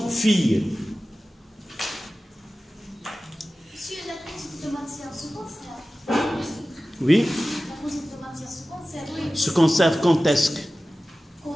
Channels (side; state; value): both; normal; correlation 0.96